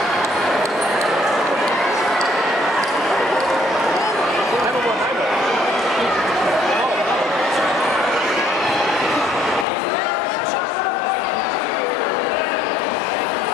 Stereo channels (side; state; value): right; drops out; at 9.7 s